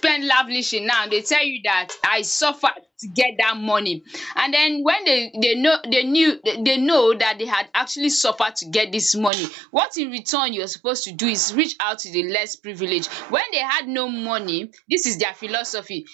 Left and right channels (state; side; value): drops out; left; at 9.3 s